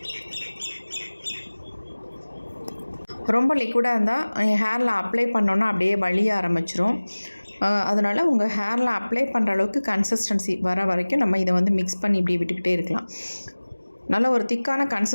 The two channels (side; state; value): both; inverted; correlation -1.00